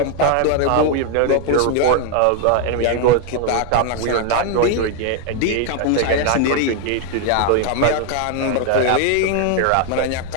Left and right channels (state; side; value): different; both; correlation 0.00